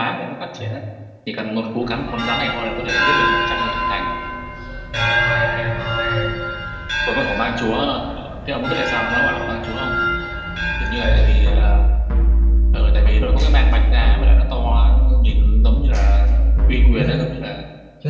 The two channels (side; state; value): both; identical; correlation 1.00